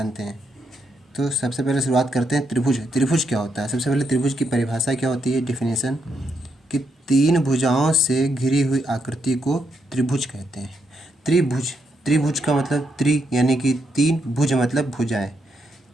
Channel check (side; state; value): both; normal; correlation 0.79